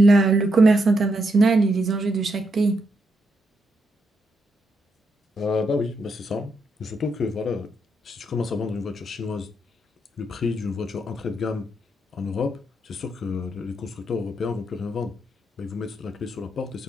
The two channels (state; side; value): normal; both; correlation 0.80